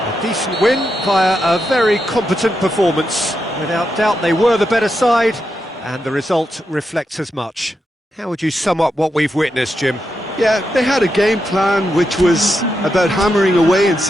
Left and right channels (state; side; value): normal; both; correlation 0.86